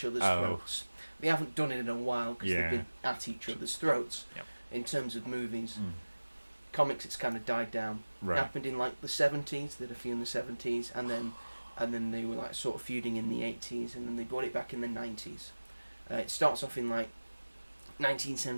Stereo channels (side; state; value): both; inverted; correlation -1.00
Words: other's throats. They haven't done it in a while because they've been at each other's throats. Yep. In terms of movies, comics, it's kind of died down. Right. It happened in like the 70s. They did a few in the 70s, and then they were like sort of feuding in the 80s, and then they brought it back in the 90s. It starts off in like